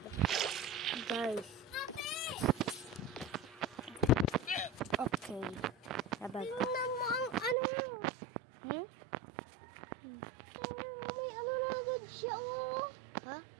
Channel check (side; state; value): left; drops out; at 7.6 s